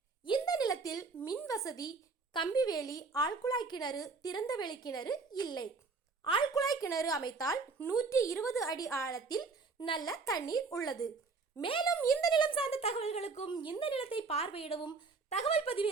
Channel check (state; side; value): quieter; left; 4.3 dB